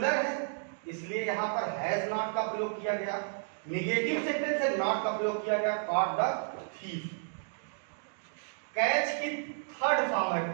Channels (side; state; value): left; silent; digital silence